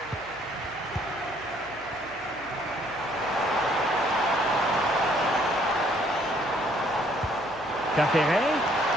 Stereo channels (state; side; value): noise; right; hum, 25 dB below the sound